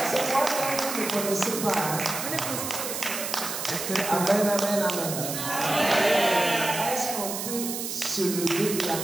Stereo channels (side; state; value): right; noise; hiss, 5 dB below the sound